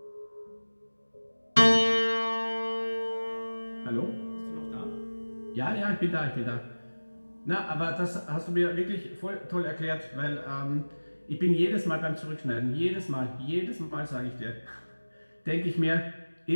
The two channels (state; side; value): inverted; both; correlation -1.00